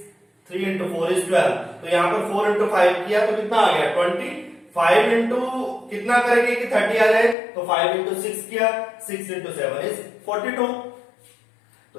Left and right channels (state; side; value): drops out; right; at 7.4 s